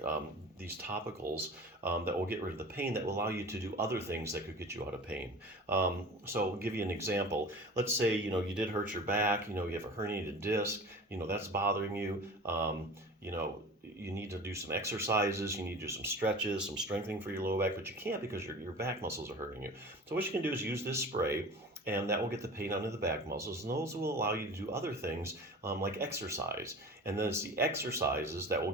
these topicals that will get rid of the pain, that will allow you to do other things that could get you out of pain. So I'll give you an example. Let's say, you did hurt your back, you have a herniated disc, that's bothering you. You need to do some exercises, you need to do some stretches, some strengthening for your lower back, but you can't because your back muscles are hurting you. So what you can do is use this spray, and that will get the pain out of the back muscles, and those will allow you to do other things like exercise. And then it's the exercises that will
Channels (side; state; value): both; normal; correlation 0.37